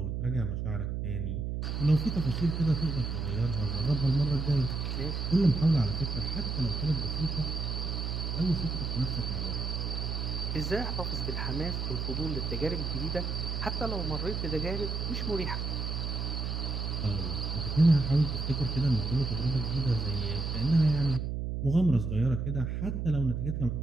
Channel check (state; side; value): noise; right; hum, 2 dB below the sound